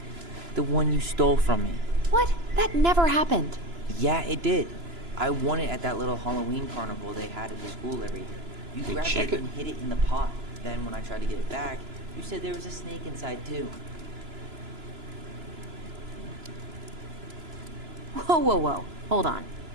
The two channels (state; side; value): late; left; 2.9 ms